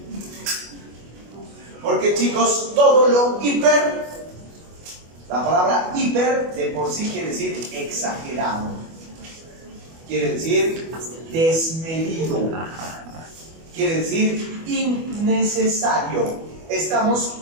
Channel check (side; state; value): left; late; 25 ms